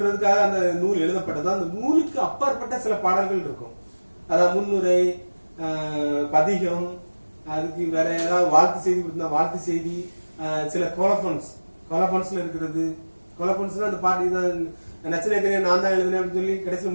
அந்த நூல் எழுதப்பட்டதோ அந்த நூலுக்கு அப்பாற்பட்ட சில பாடல்கள் இருக்கும். அதாவது முன்னுரை, பதிகம், அதுக்கு வேற ஏதாவது வாழ்த்து செய்தி கொடுத்தா வாழ்த்து செய்தி, சில கோலபன்ஸ்ல இருக்கிறது. கோலபன்ஸ்னா அந்த பாட்டு நச்சினேக்கரே நான் தான் எழுதுனேன் அப்படின்னு சொல்லி கடைசியில்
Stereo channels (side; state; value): both; inverted; correlation -1.00